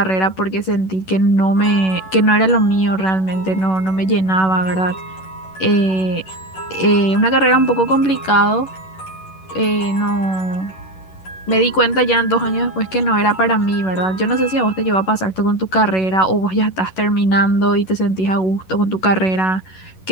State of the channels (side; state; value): right; late; 11 ms